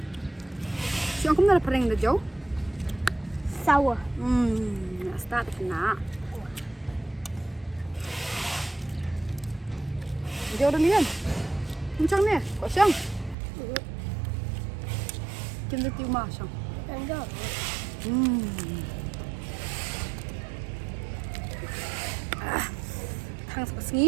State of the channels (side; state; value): left; drops out; at 13.4 s